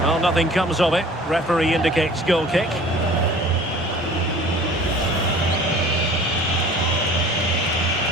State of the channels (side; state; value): both; normal; correlation 0.46